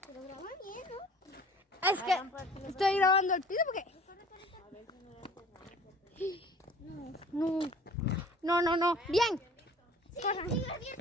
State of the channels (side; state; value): both; normal; correlation 0.48